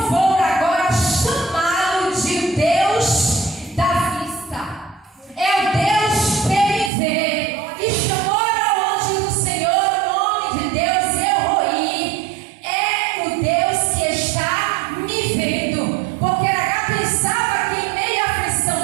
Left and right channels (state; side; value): drops out; left; at 6.9 s